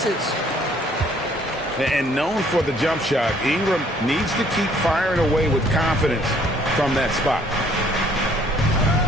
And known for the jump shot, Ingram needs to keep firing away with confidence from that spot.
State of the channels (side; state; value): both; normal; correlation 0.61